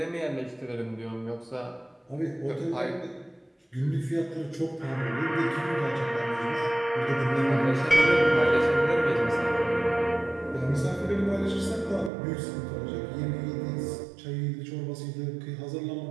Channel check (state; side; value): drops out; left; at 12.1 s